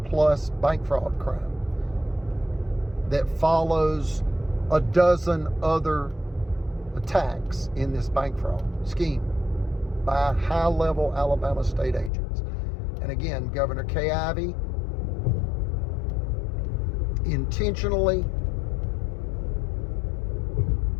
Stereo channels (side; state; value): right; drops out; at 12.1 s